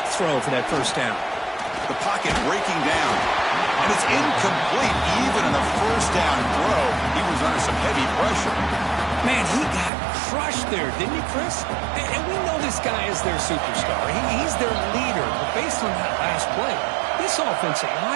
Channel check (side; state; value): left; drops out; at 9.9 s